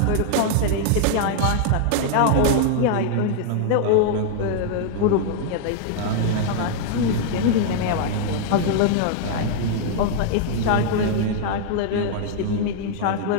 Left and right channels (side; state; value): both; different; correlation 0.00